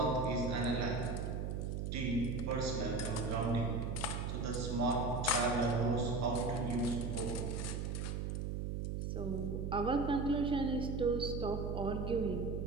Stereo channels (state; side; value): noise; right; hum, 2 dB below the sound